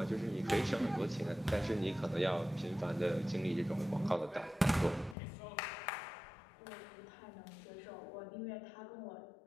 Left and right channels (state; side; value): drops out; right; at 5.2 s